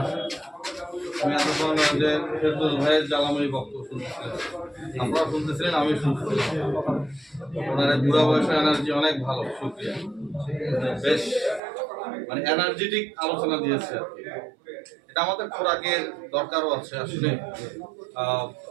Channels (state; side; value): drops out; left; at 11.6 s